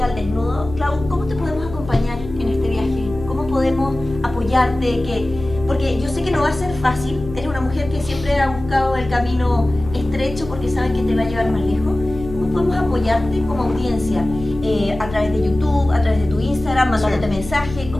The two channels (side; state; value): left; noise; hum, 12 dB below the sound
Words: al Desnudo, Clau, ¿cómo te podemos acompañar en este viaje? ¿Cómo podemos apoyarte? Porque yo sé que no va a ser fácil, eres una mujer que siempre ha buscado el camino estrecho porque sabe que te va a llevar más lejos. Podemos apoyarte como audiencia a través de YouTube, a través de tu Instagram, mandándote mensajes.